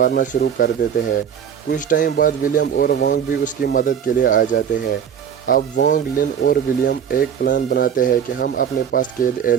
शुरू कर देते हैं। कुछ टाइम बाद विलियम और वोंग भी उसकी मदद के लिए आ जाते हैं। अब वोंग, लिन और विलियम एक प्लान बनाते हैं कि हम अपने पास कैद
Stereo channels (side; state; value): left; quieter; 8.3 dB